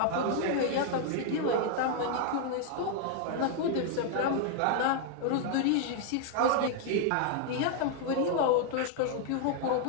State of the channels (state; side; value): different; both; correlation 0.00